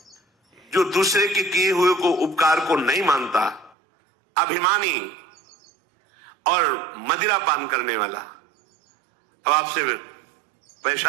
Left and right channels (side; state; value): left; drops out; at 3.8 s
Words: जो दूसरे के किए हुए को उपकार को नहीं मानता, अभिमानी और मदिरा पान करने वाला, अब आपसे